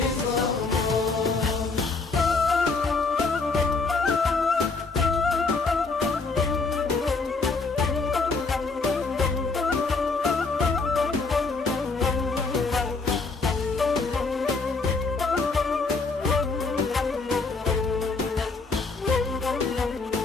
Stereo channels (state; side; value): quieter; right; 4.1 dB